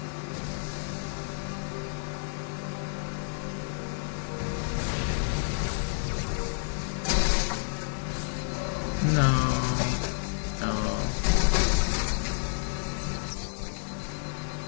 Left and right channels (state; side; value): silent; right; digital silence